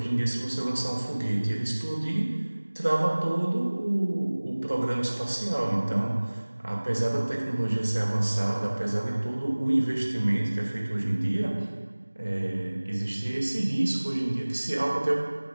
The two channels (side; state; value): both; inverted; correlation -1.00